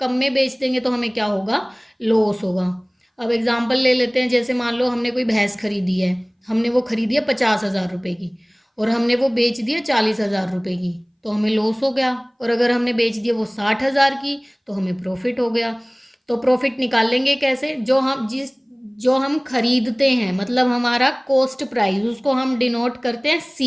में बेच देंगे तो हमें क्या होगा, लॉस होगा। अब एग्जांपल ले लेते हैं, जैसे मान लो हमने कोई भैंस खरीदी है, हमने वो खरीदी है 50,000 रुपये की और हमने वो बेच दिया 40,000 रुपये की, तो हमें लॉस हो गया। और अगर हमने बेच दिया वो 60,000 की तो हमें प्रॉफिट हो गया। तो प्रॉफिट निकाल लेंगे कैसे, जो हम खरीदते हैं, मतलब हमारा कॉस्ट प्राइस, उसको हम डिनोट करते हैं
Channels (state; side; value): identical; both; correlation 1.00